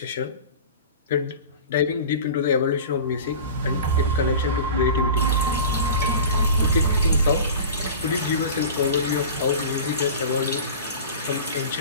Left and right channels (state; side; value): inverted; both; correlation -0.35